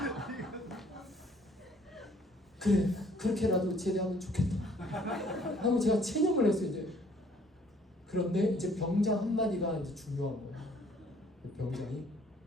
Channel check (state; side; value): normal; both; correlation 0.59